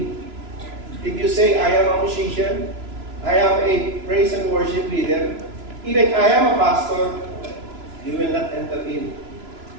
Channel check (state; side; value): late; left; 3.0 ms